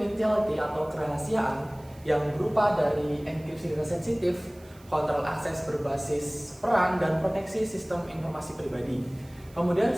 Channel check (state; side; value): noise; right; hiss, 27 dB below the sound